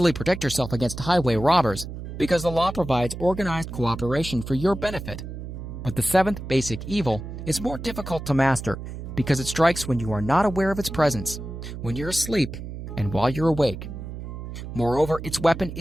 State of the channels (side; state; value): right; noise; hum, 9 dB below the sound